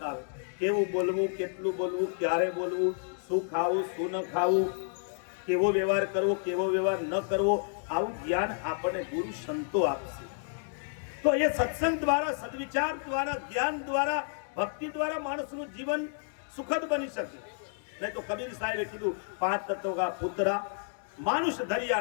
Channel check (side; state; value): right; silent; digital silence